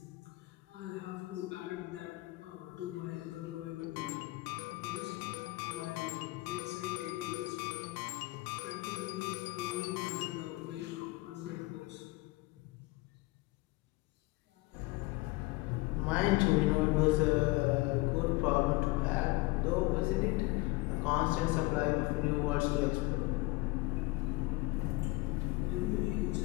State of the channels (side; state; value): right; quieter; 21.8 dB